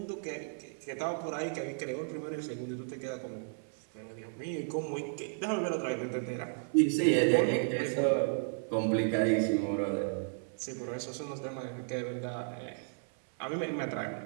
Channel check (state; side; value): silent; left; 55 dB below the other